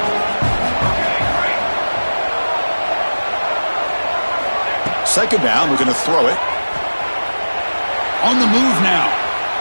Second down, we're going to throw it. On the move now.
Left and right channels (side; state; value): both; inverted; correlation -1.00